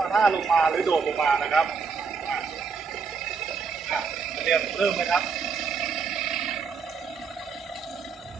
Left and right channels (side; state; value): left; quieter; 5.4 dB